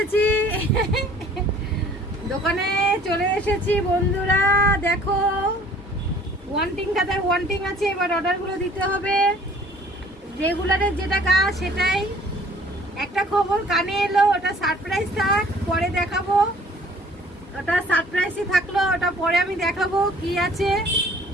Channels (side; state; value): both; normal; correlation 0.54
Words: দোকানে চলে এসেছি বন্ধুরা, দেখো ওয়ান্টিং খাতায় ওয়ান্টিং আছে। এবার অর্ডারগুলো দিতে হবে। রেগুলারের যেটা কাজ সেটাই। একটা খবর কানে এলো, ওটা সারপ্রাইজ থাক, পরে দেখাবো। ওটা সারপ্রাইজই থাকলো, ওটা পরে আমি দেখাবো কি আছে।